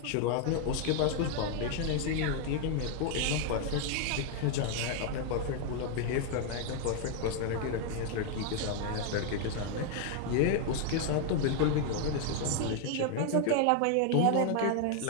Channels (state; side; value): different; both; correlation 0.00